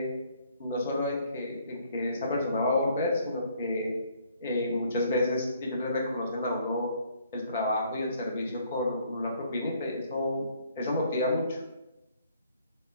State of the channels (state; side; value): inverted; both; correlation -0.64